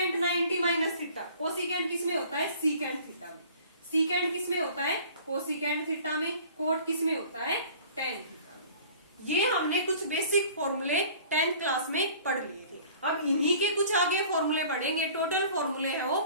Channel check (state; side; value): inverted; both; correlation -0.49